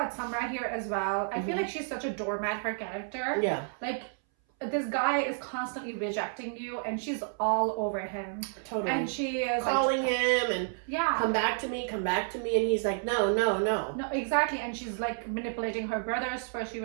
Samra here as well? I feel like she's such a doormat, her character. Yeah. Like, this guy is constantly rejecting you and she's all over him. Totally. And she is calling him and yeah, come back to me. And he's like, no. No, exactly. And she's like manipulating her brothers. First she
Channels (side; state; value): left; silent; 57 dB below the other